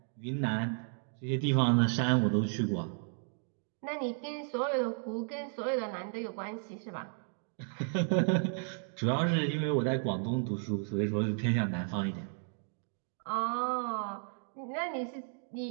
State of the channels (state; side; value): silent; left; 55 dB below the other